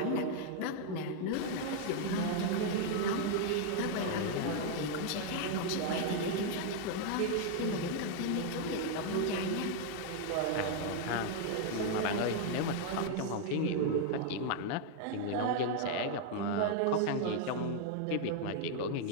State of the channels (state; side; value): different; both; correlation 0.00